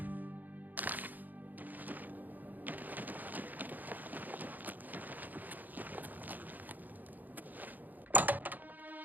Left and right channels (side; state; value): left; late; 0.084 ms